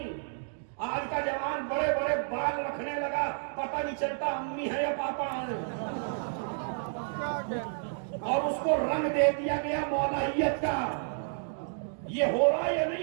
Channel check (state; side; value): silent; left; digital silence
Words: آج کا جوان بڑے بڑے بال رکھنے لگا, پتہ نہیں چلتا امی ہے یا پاپا ہے, اور اس کو رنگ دے دیا گیا مولائیت کا. یہ ہو رہا یا